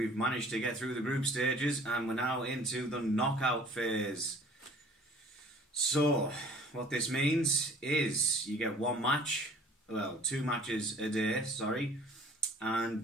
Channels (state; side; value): normal; both; correlation 0.51